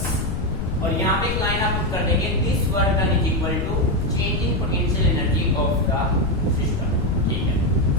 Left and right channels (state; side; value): noise; left; rumble, 3 dB below the sound